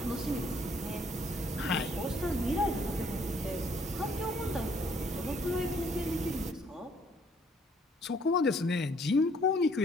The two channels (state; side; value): normal; both; correlation 0.64